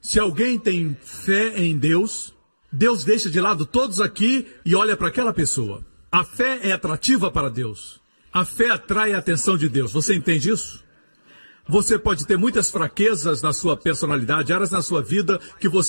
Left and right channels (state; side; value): inverted; both; correlation -1.00